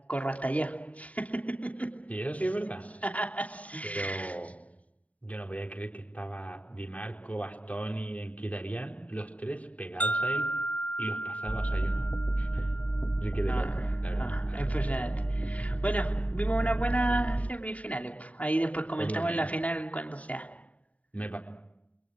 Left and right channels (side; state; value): right; late; 0.068 ms